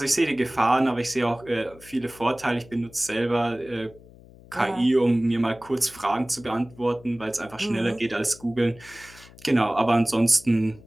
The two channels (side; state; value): left; noise; hum, 22 dB below the sound